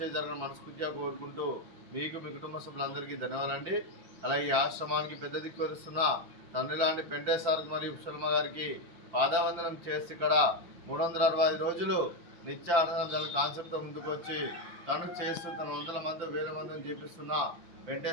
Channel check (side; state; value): left; late; 5.8 ms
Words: జరగని మనస్ఫూర్తిగా కోరుకుంటూ మీకు మీ కుటుంబ సభ్యులందరికీ ధన్యవాదాలండి. అలాగే ఈ ఆశ్రమానికి పెద్ద దిక్కు వస్తున్న తండ్రి లాంటి పెంటేశ్వర్ మరియు శర్మ గారికి పాదావందనం చేసి ఇక్కడ 365 రోజులు నిత్య ఆనందం కాన్సెప్ట్తో ముందుకు వచ్చి తను చేస్తూ తన వందల మంది వేల మందిని చేపిస్తున్న